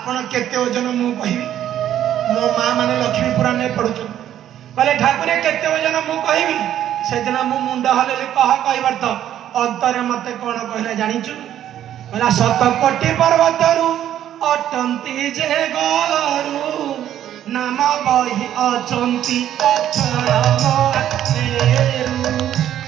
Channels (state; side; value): quieter; left; 11.2 dB